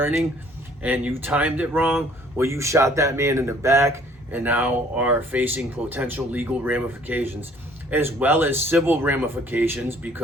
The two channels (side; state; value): both; normal; correlation 0.58